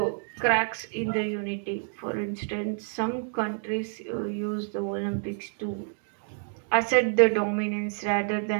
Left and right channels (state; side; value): silent; left; digital silence